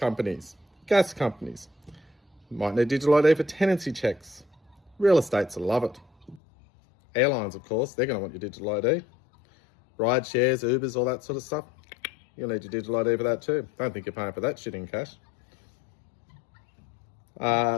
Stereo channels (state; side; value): drops out; right; at 6.4 s